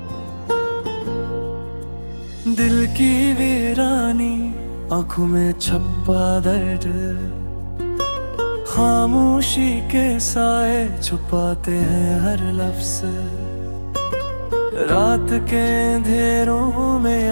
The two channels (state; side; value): inverted; both; correlation -1.00